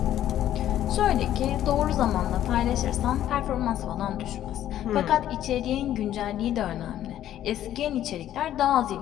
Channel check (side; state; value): right; quieter; 12.0 dB